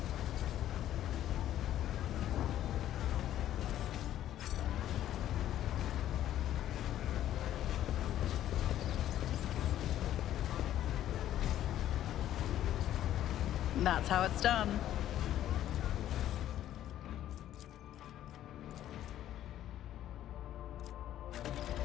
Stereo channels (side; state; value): right; quieter; 12.2 dB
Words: That's how it's done.